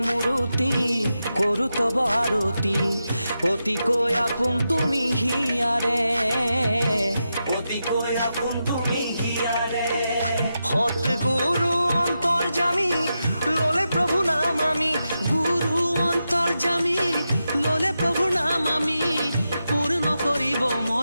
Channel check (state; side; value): inverted; both; correlation -0.88